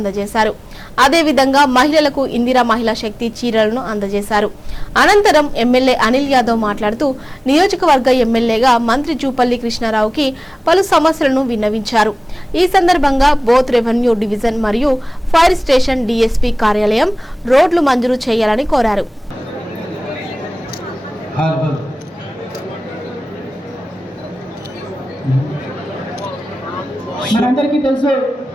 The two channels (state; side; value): normal; both; correlation 0.98